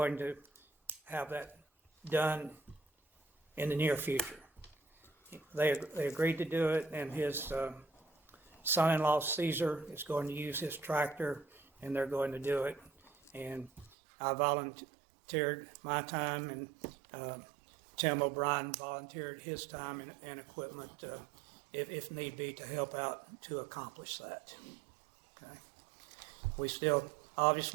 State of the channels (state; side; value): drops out; left; at 13.9 s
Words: to have that done in the near future. They agreed to do it, and his son-in-law Caesar is going to use his tractor, and they're going to do it. And I volunteered my time, and Tim O'Brien volunteered his time and equipment, if need be, to help out to accomplish that. Okay. We still